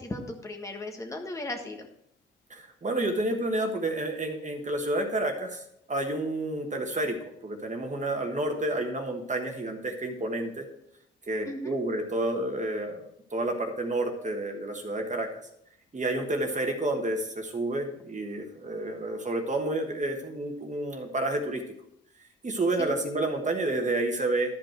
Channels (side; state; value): both; normal; correlation 0.43